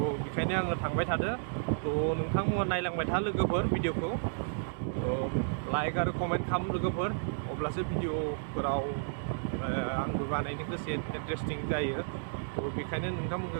बेखायनो आङो थांबाय थादो नोंथांमोना नायलांबाय था लोगोफोर भिडिअखौ लाइक आरो कमेन्ट खालाम लोगोफोर अब्लासो भिडिअफोराव आंबो बानायनो गोसो इन्टारेस्टिं जायो बेखायनो नोंथांमोनखौ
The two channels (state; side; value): silent; left; digital silence